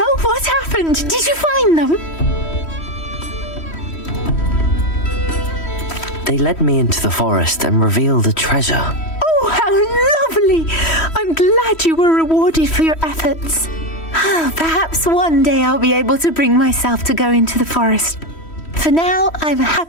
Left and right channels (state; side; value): late; right; 3.1 ms